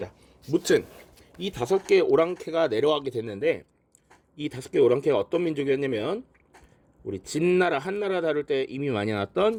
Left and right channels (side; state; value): both; identical; correlation 1.00